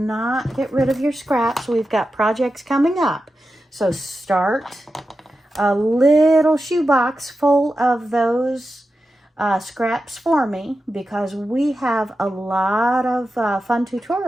get rid of your scraps. We've got projects coming up. So start a little shoebox full of those scraps for me, because we have a lot of fun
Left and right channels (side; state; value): both; normal; correlation 0.91